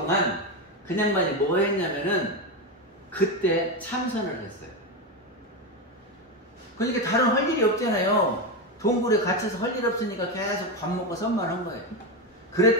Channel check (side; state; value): both; normal; correlation 0.13